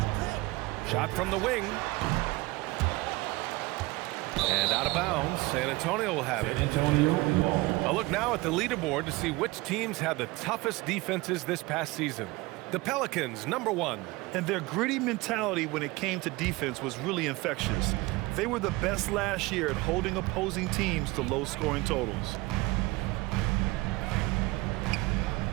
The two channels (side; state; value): left; quieter; 22.1 dB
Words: Shot from the wing. And out of bounds. San Antonio will have it. A look now at the leaderboard to see which teams had the toughest defenses this past season. The Pelicans, number 1. And their gritty mentality when it came to defense was really infectious. They were the best last year at holding opposing teams to low-scoring totals.